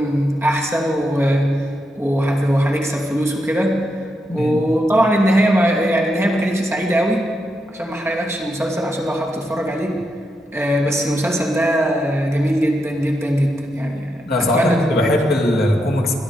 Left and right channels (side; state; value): both; normal; correlation 0.83